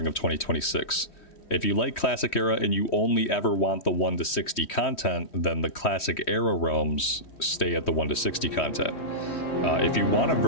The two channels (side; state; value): right; late; 3.1 ms